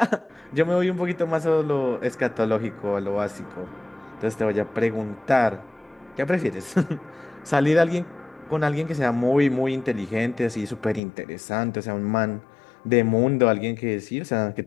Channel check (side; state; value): right; drops out; at 11.0 s